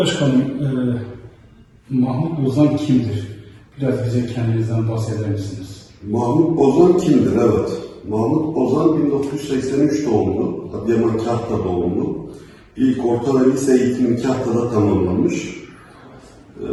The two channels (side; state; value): both; identical; correlation 1.00